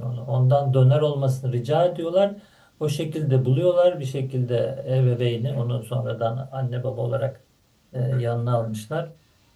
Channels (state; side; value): identical; both; correlation 1.00